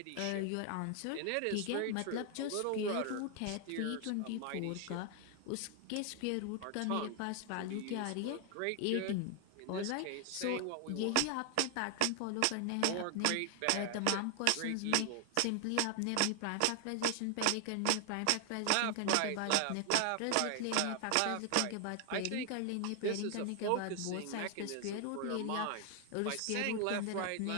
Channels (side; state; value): both; different; correlation 0.00